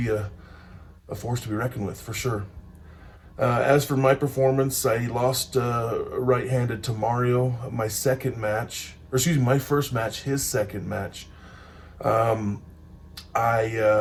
a force to be reckoned with for sure. As for my performance, I lost right-handed to Mario. My first match, his second match.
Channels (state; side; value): identical; both; correlation 1.00